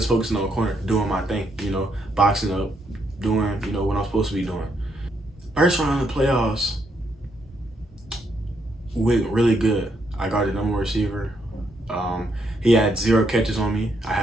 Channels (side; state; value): both; normal; correlation 0.76